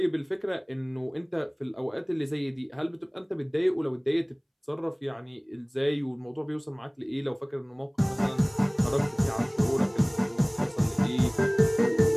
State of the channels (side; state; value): both; identical; correlation 1.00